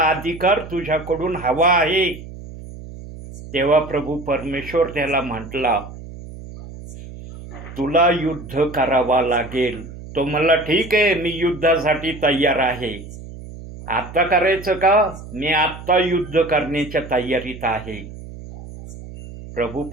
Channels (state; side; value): noise; right; hum, 14 dB below the sound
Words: अधिकार तुझ्याकडून हवा आहे. तेव्हा प्रभू परमेश्वर त्याला म्हटला, तुला युद्ध करावा लागेल. तो म्हणला, ठीक आहे, मी युद्धासाठी तयार आहे. आत्ता करायचं का? मी आत्ता युद्ध करण्याच्या तयारीत आहे. प्रभू